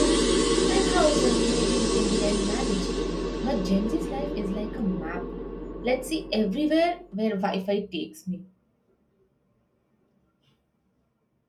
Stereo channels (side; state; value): both; identical; correlation 1.00